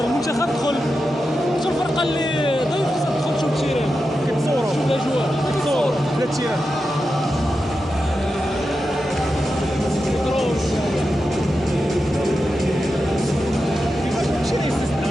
المنتخب دخل، شو الفرقه اللي ضيف تدخل تشوف التيران كتصوروا شوف الاجواء كتصور لا التيران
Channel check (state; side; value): normal; both; correlation 0.90